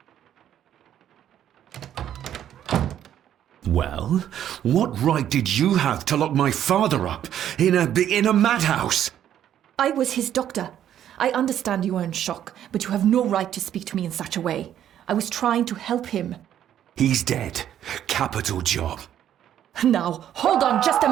Well, what right did you have to lock my father up in a madhouse? I was his doctor. I understand you are in shock, but you have no right to speak to me in such a way. I was trying to help him. He's dead. Capital job. Now, hold on just a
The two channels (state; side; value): quieter; left; 10.6 dB